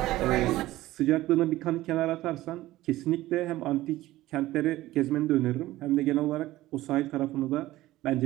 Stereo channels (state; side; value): quieter; left; 16.5 dB